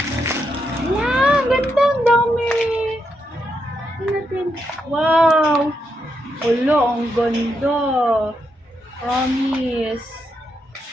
Ayan, ganda. Ang dami. Tingnan natin. Wow. Wala, ang ganda. Promise.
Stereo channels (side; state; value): both; normal; correlation 0.82